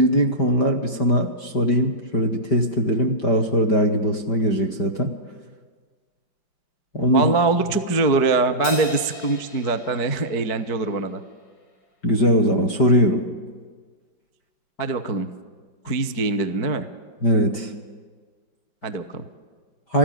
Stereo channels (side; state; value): right; late; 4.7 ms